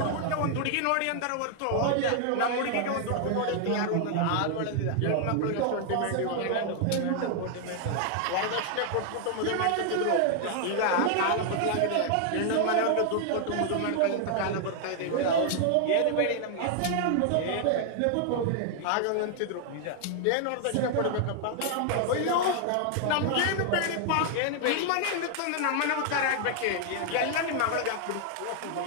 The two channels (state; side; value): different; both; correlation 0.00